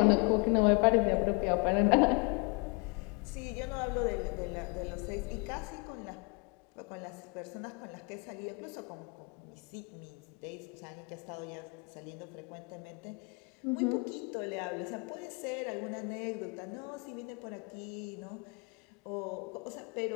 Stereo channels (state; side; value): quieter; right; 31.6 dB